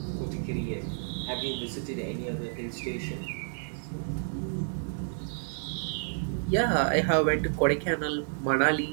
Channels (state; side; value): silent; left; digital silence